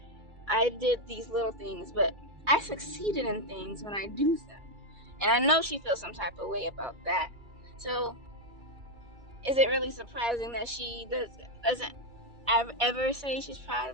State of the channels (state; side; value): late; left; 2.3 ms